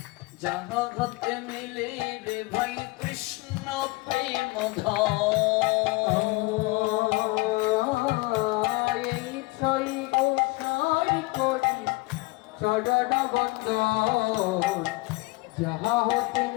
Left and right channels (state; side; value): quieter; right; 24.2 dB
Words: যাহা হতে মিলে রে ভাই কৃষ্ণ প্রেম এই ছয় গোসাই করি চরণ বন্দন, যাহা হতে